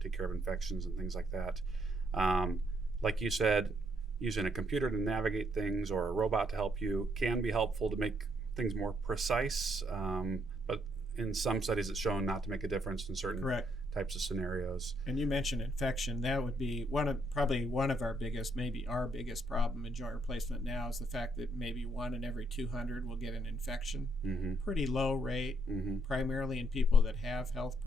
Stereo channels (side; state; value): both; normal; correlation 0.72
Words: take care of infections and things like that. Like you said, using a computer to navigate things or a robot to help you can be helpful to make things more precise, but in some studies it's shown not to make a difference in certain types of scenarios. And you mentioned infection. That would be probably one of our biggest, maybe our biggest problem in joint replacement now is the fact that maybe 1 in every 200 will get an infection. Pretty low rate, primarily in people that have health